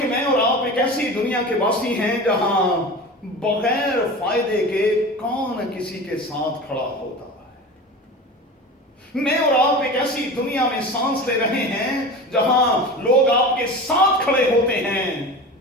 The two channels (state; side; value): normal; both; correlation 0.32